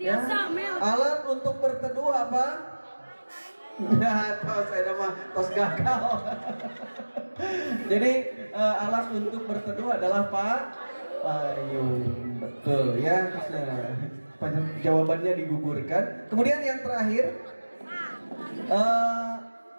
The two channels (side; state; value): both; inverted; correlation -1.00